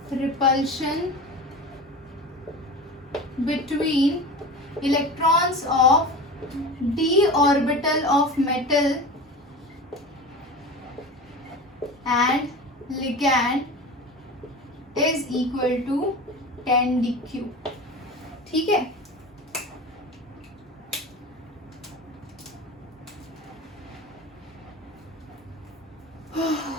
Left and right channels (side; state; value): both; normal; correlation 0.31